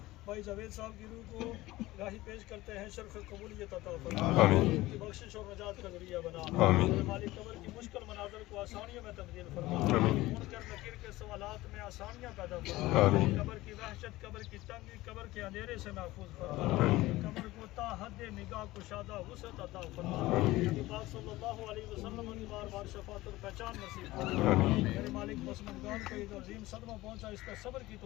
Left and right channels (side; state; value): right; quieter; 18.2 dB